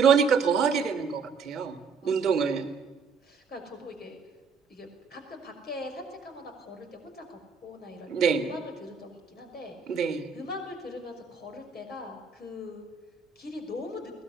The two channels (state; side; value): quieter; left; 5.4 dB